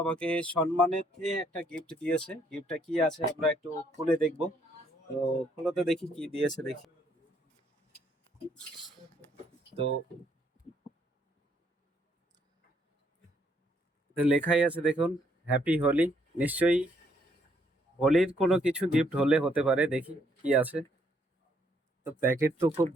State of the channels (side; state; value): both; normal; correlation 0.69